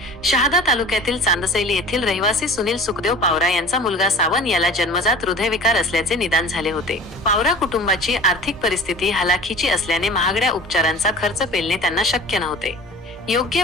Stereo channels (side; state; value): both; normal; correlation 0.40